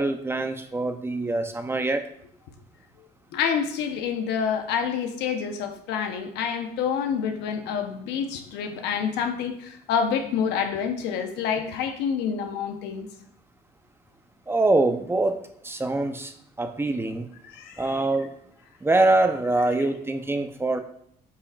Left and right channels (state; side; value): normal; both; correlation 0.60